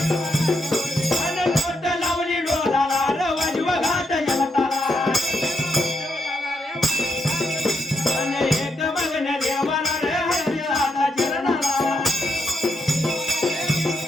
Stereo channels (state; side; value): normal; both; correlation 0.81